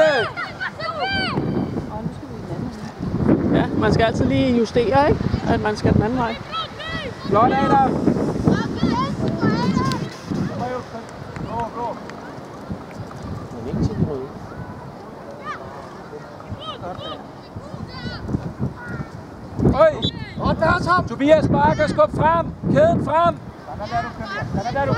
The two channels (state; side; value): identical; both; correlation 1.00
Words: Ja, man skal altid lige justere, ikke? At man skal den anden vej. Flot, Adam. Øj! Tobias Bakker, skub frem! Kæden frem!